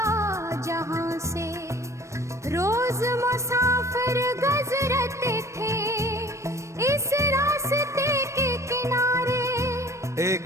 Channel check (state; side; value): late; left; 0.14 ms